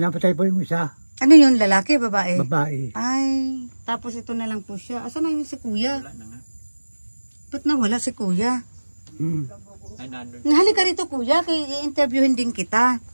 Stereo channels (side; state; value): both; inverted; correlation -1.00